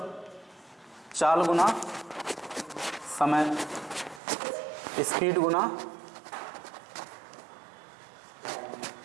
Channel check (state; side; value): drops out; left; at 4.2 s